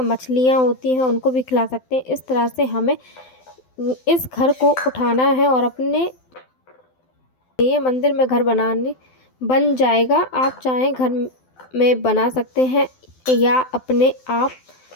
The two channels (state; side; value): late; right; 12 ms